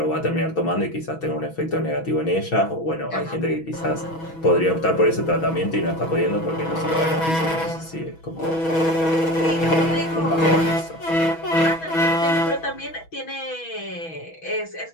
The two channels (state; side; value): late; right; 6.1 ms